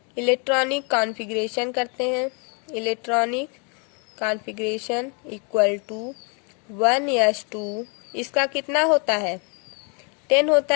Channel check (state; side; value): quieter; right; 35.3 dB